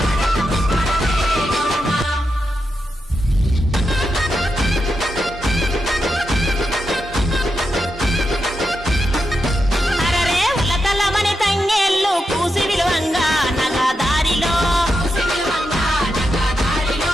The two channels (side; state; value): both; normal; correlation 0.86